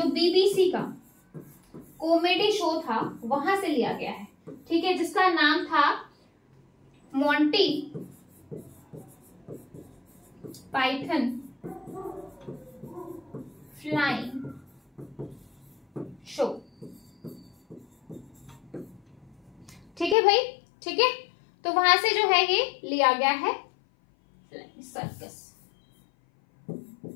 बीबीसी का कॉमेडी शो था वहां से लिया गया है, ठीक है, जिसका नाम था मोंटी पाइथन फ्लाइंग शो, ठीक है भाई, ठीक है। तो वहां से जो है ये लिया गया है सर्कस,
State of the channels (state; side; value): drops out; right; at 20.2 s